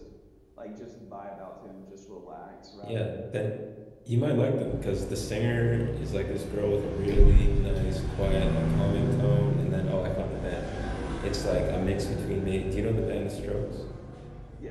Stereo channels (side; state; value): both; identical; correlation 1.00